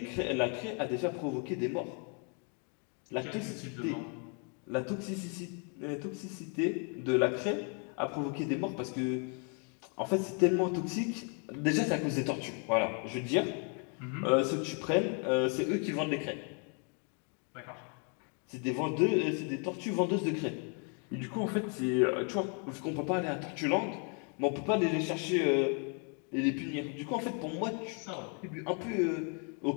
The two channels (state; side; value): quieter; right; 39.0 dB